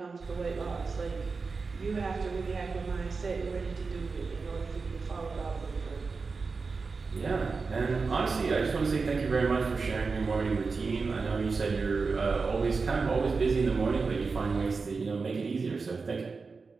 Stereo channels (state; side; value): quieter; left; 4.5 dB